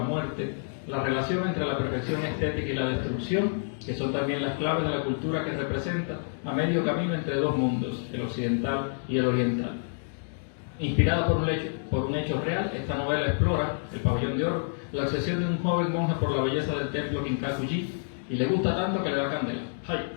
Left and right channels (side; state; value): right; silent; digital silence